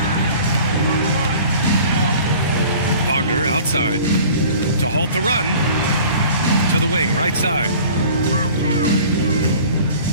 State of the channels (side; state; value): both; inverted; correlation -0.46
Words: Wagner outside to halt the run to the wing, right side.